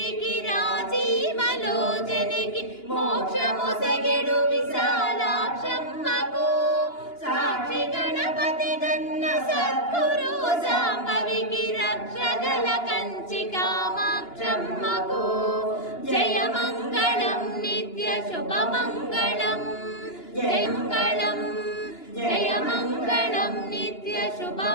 రాజీవలోచనికి మోక్షముసగెడు విశాలాక్షమ్మకు సాక్షి గణపతి గన్న సద్గురు సాంబవికి రక్షగల కంచి కామాక్షమ్మకు జయమంగళం నిత్య శుభమంగళం జయమంగళం జయమంగళం నిత్య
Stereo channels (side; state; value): right; late; 2.9 ms